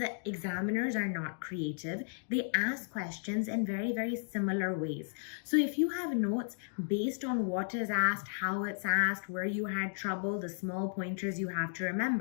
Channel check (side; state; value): right; silent; digital silence